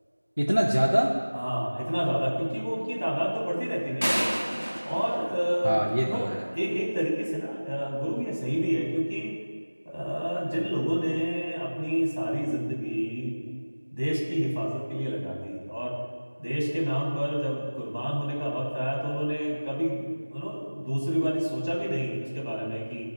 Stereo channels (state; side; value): inverted; both; correlation -1.00